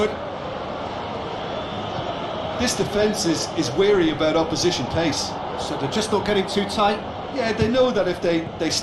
This defence is wary about opposition pace. So they're just not getting too tight. Yeah, they know that if they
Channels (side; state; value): both; identical; correlation 1.00